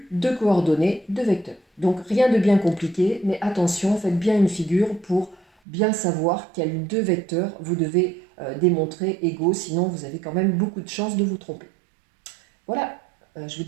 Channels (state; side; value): drops out; left; at 5.5 s